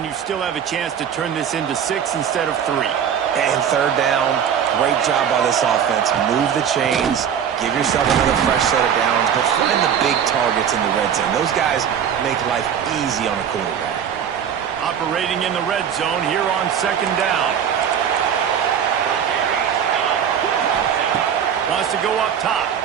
you still have a chance to turn this into 6 instead of 3. And third down, great job by this offense. Move the chains, give yourself another fresh set of downs, but find the big targets in the red zone. Those guys make life easy on a quarterback. Operating in the red zone here on second down. Wants to go up top.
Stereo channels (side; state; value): left; quieter; 8.4 dB